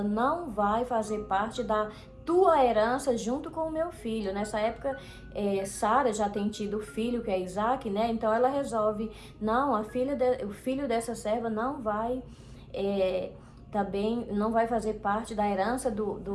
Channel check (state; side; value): identical; both; correlation 1.00